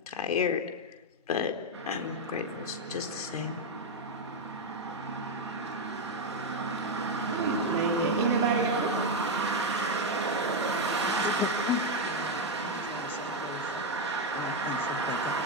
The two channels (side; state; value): both; normal; correlation 0.03